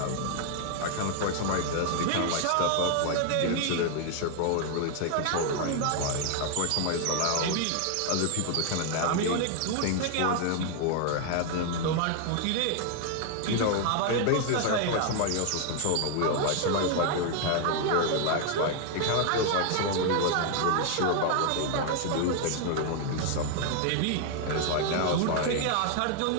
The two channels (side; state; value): both; different; correlation 0.00